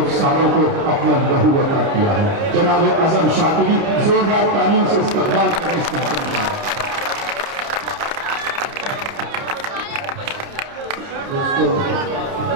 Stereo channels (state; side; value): late; left; 30 ms